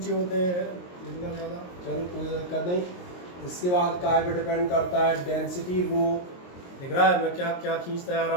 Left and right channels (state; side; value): late; right; 22 ms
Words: होते हैं इतना ज़्यादा, चलो कोई दिक्कत नहीं। इसके बाद काय पे डिपेंड करता है, डेंसिटी रो, दिख रहा है मैं क्या क्या खींचता आ